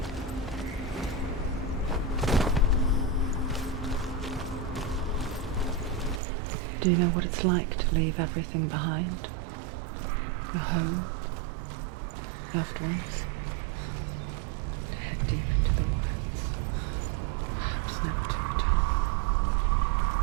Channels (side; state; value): left; drops out; at 6.2 s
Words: Do you know what it's like to leave everything behind? Your home, loved ones, to head deep into the wilds. vows never to return.